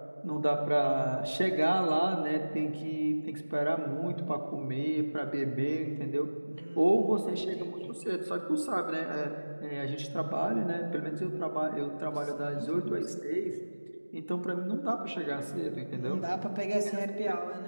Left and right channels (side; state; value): both; inverted; correlation -1.00